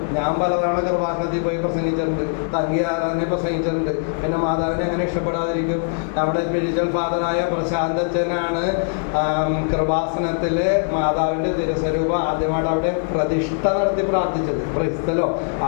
ഞാൻ പലതവണ ഗർഭാശയത്തിൽ പോയി പ്രസംഗിച്ചിട്ടുണ്ട്, തങ്കി ആരാധന പ്രസംഗിച്ചിട്ടുണ്ട്. പിന്നെ മാതാവിനെ എങ്ങനെ ഇഷ്ടപ്പെടാതിരിക്കും? നമ്മുടെ സ്പിരിച്വൽ ഫാദറായ പ്രശാന്തച്ചനാണ് കൃപാസനത്തില് മാതാവിന്റെ തിരുസ്വരൂപം ആദ്യമായിട്ട് അവിടെ പ്രതിഷ്ഠ നടത്തി പ്രാർത്ഥിച്ചത്. Price the Lord.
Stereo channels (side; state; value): right; silent; digital silence